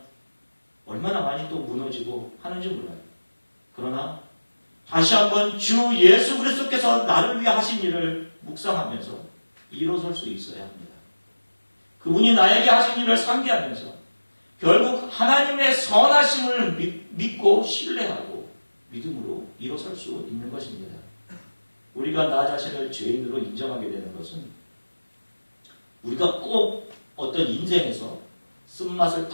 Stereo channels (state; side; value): inverted; both; correlation -1.00